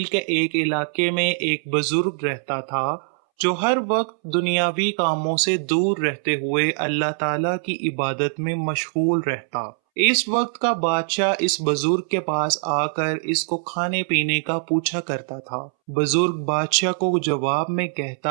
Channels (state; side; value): silent; left; 64 dB below the other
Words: کے ایک علاقے میں ایک بزرگ رہتا تھا جو ہر وقت دنیاوی کاموں سے دور رہتے ہوئے اللہ تعالیٰ کی عبادت میں مشغول رہتا۔ اس وقت کا بادشاہ اس بزرگ کے پاس آ کر اس کو کھانے پینے کا پوچھا کرتا تھا۔ بزرگ بادشاہ کو جواب میں